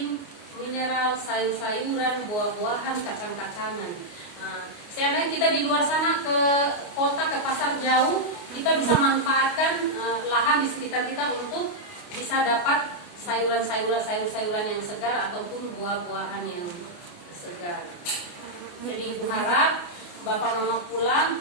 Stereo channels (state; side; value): late; right; 29 ms